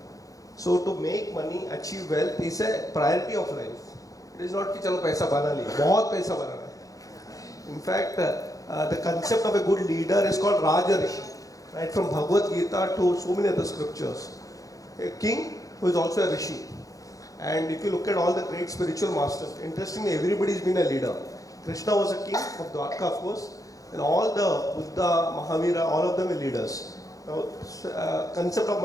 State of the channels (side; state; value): right; late; 0.17 ms